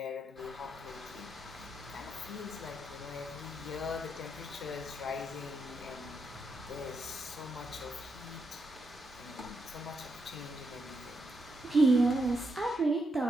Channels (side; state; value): both; normal; correlation 0.81